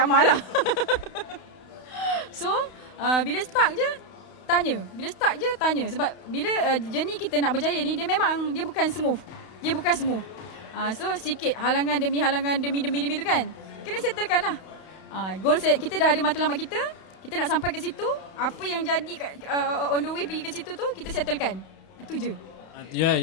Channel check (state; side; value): late; right; 31 ms